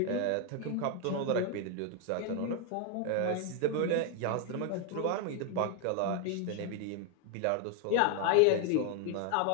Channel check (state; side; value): different; both; correlation 0.01